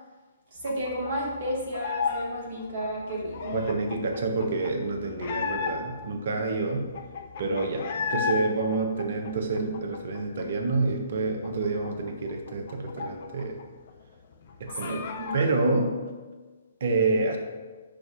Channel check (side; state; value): both; inverted; correlation -0.61